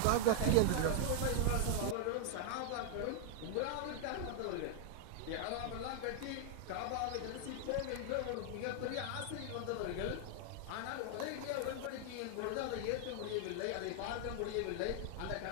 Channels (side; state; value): both; different; correlation 0.00